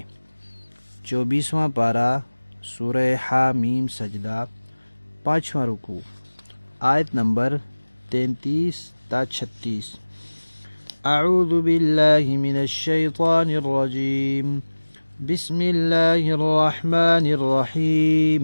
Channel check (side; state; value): both; inverted; correlation -1.00